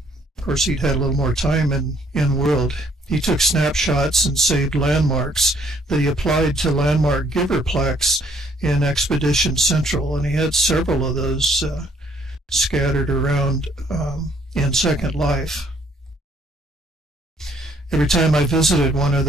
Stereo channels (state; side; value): normal; both; correlation 0.65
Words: Of course, he'd had a little more time in world. He took snapshots and saved landmarks that he applied to landmark giver plaques in Expedition Central, and he had several of those scattered around in Second Life. Every time I visited one of